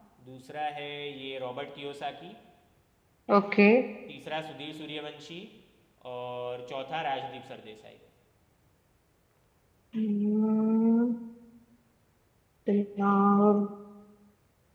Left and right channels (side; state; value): both; identical; correlation 1.00